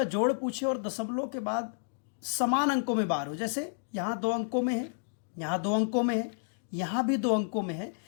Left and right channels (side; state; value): right; silent; digital silence